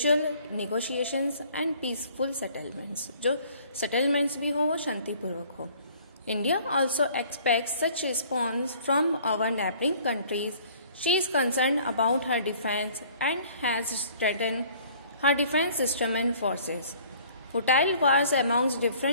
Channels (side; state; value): both; inverted; correlation -0.55